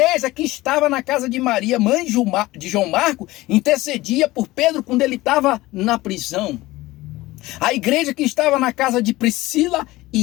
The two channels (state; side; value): quieter; right; 18.7 dB